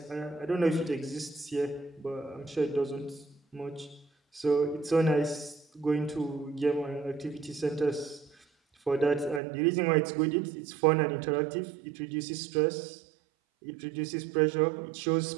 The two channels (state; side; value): drops out; left; at 9.4 s